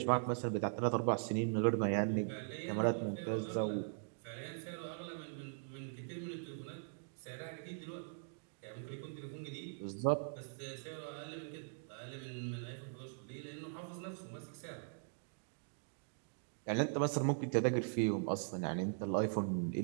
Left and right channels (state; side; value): silent; left; digital silence